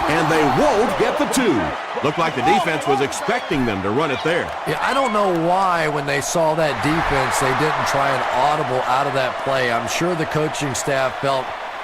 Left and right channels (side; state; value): both; identical; correlation 1.00